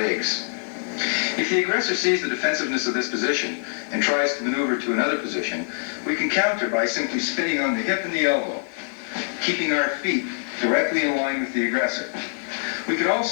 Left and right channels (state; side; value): silent; right; digital silence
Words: If the aggressor sees the defensiveness of this position and tries to maneuver to another position, we can counter by simply spinning on the hip and the elbow, keeping our feet directly in line with the aggressor. We can